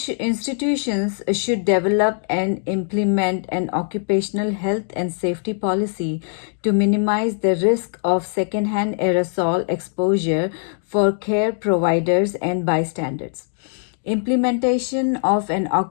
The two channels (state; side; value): silent; right; digital silence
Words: should develop and implement an occupational health and safety policy to minimize the risk of secondhand aerosol exposure for care providers and bystanders. Implementation of an